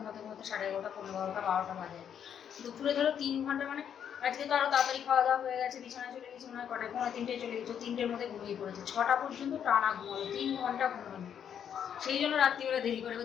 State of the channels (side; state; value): right; quieter; 8.6 dB